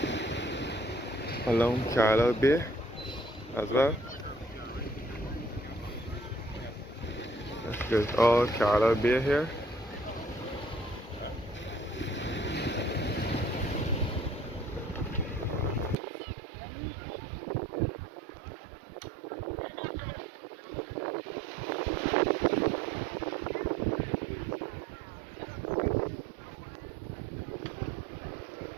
along Carlisle Bay as well. There's all Carlisle Bay here.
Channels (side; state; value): left; drops out; at 16.0 s